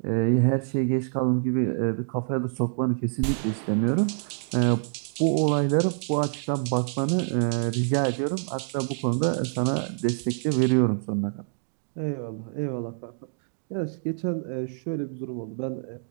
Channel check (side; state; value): left; silent; digital silence